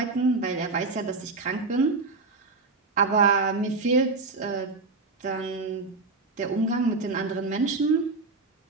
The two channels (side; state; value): left; quieter; 3.8 dB